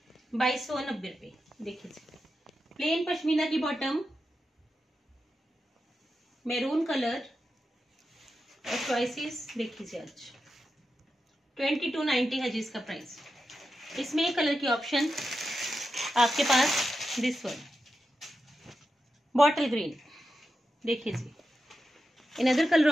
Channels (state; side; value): normal; both; correlation 0.89